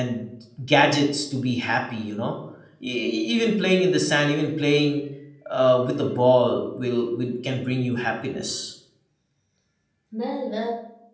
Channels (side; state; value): both; identical; correlation 1.00